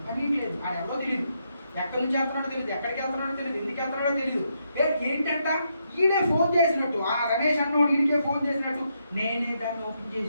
పని లేదు. ఆడ ఎవరో తెలియదు, ఎక్కడి నుంచి వెళ్తున్నాడో తెలియదు, ఎక్కడికి వెళ్తున్నాడో తెలియదు, ఎందుకు వెళ్తున్నాడో తెలియదు. ఏంటంట? ఈడే ఫోన్ చేసినట్టు, ఆ రమేష్ అన్నోడు ఈడికే ఫోన్ చేసినట్టు, నేనే దాన్ని ఓపెన్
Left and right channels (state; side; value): inverted; both; correlation -0.79